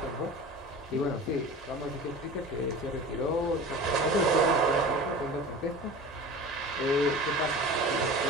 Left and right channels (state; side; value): normal; both; correlation 0.36